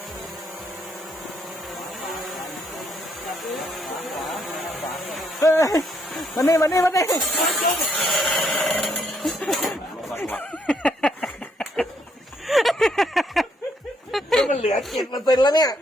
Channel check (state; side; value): normal; both; correlation 0.72